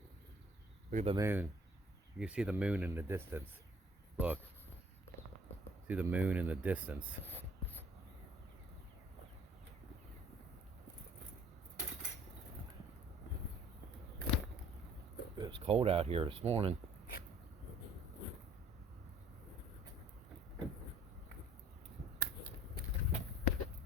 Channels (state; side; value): normal; both; correlation 0.55